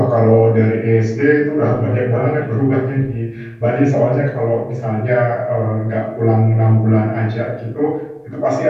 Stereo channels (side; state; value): both; identical; correlation 1.00